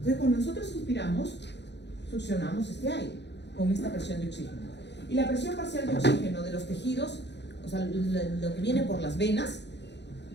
cuando nosotros inspiramos, succionamos este aire con esta presión de oxígeno. Y la presión parcial de oxígeno de los tejidos, o sea, lo que viene por las venas,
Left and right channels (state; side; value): late; right; 0.50 ms